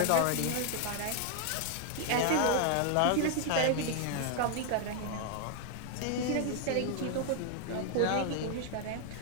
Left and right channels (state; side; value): different; both; correlation 0.00